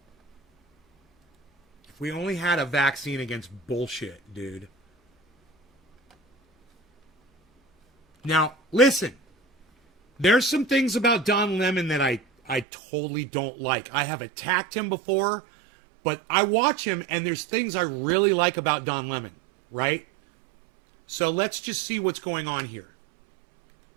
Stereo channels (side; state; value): left; drops out; at 12.7 s